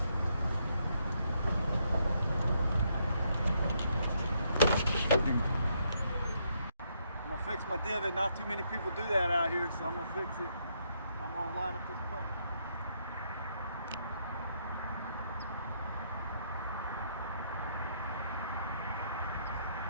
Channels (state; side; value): inverted; both; correlation -0.75